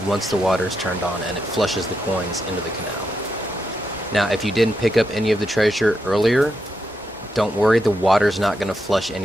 once the water is turned on and it flushes the coins into the canal. Now, if you didn't pick up any of the treasure earlier, don't worry, the water's not going to flush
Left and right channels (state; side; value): normal; both; correlation 0.84